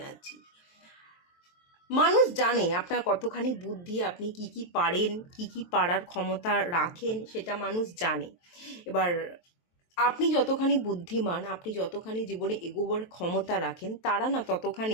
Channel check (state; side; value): late; right; 23 ms